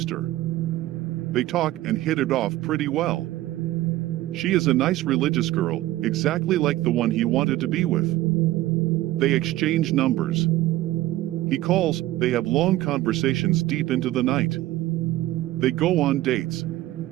They talk and hit it off pretty well. She is a nice religious girl, exactly like the one he wanted to be with. They exchange numbers. He calls, they have long conversations deep into the night. They go on dates.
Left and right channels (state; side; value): quieter; left; 16.1 dB